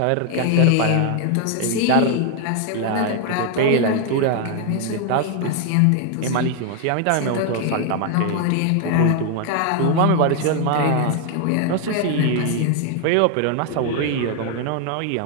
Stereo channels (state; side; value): different; both; correlation 0.00